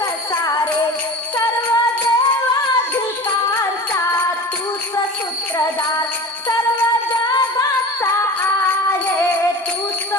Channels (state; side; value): normal; both; correlation 0.34